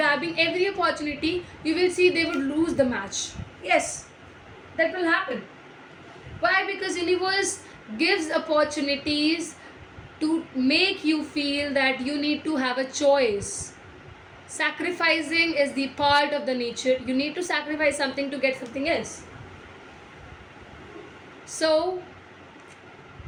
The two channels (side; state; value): both; identical; correlation 1.00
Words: every opportunity, you will see they would lose the match. Yes, that will happen. Why? Because universe gives opportunities to make you feel that you need to have a choice. Sacrificing is the part of the nature. You need to sacrifice something to get something else. So